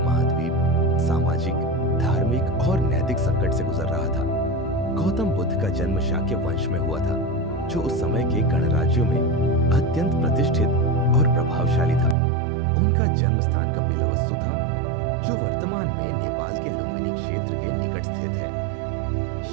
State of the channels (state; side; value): drops out; left; at 12.2 s